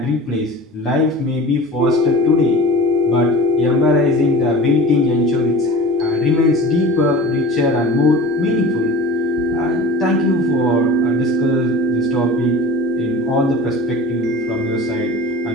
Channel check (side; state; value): both; normal; correlation 0.37